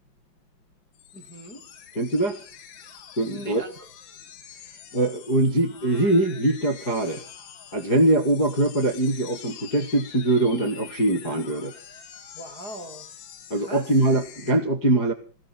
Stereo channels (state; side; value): late; right; 4.9 ms